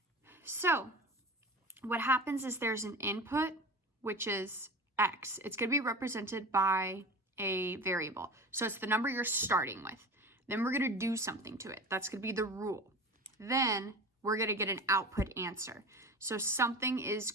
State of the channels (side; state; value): both; normal; correlation 0.33